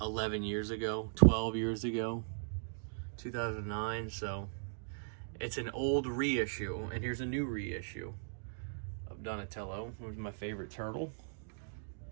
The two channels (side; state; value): left; silent; digital silence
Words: years ago, 12 years ago, 2009. So it's an old reissue, and here's a new reissue of Donatello, which is my favorite turtle.